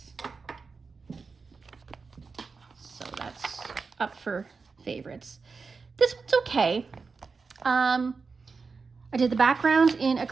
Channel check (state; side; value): quieter; left; 4.7 dB